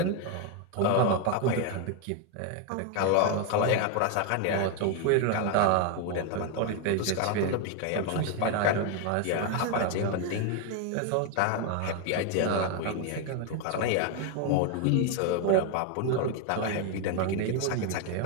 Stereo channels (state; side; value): different; both; correlation 0.01